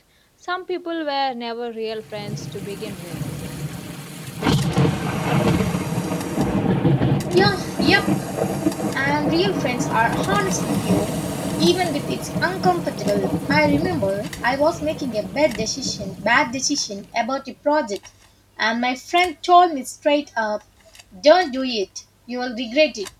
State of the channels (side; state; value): both; identical; correlation 1.00